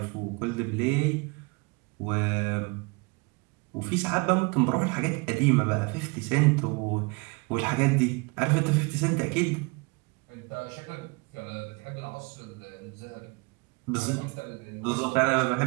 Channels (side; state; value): left; quieter; 29.0 dB